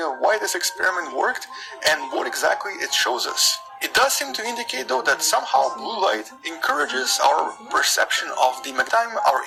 why this experiment worked and what exactly it shows us. It does seem to indicate though that somehow blue light encourages our perception of the magnetite. Our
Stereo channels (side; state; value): both; identical; correlation 1.00